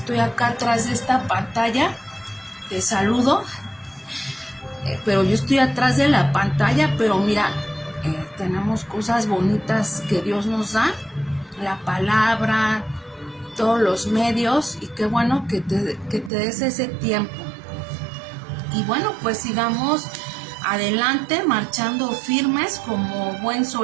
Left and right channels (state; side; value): drops out; left; at 16.3 s